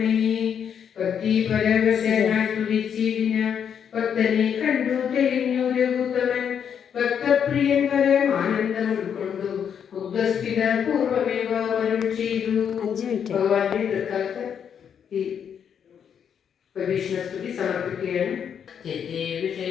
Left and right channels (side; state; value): right; quieter; 8.0 dB